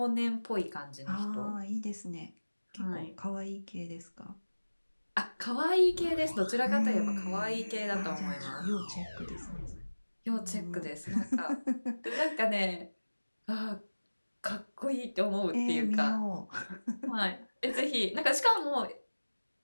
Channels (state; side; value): inverted; both; correlation -1.00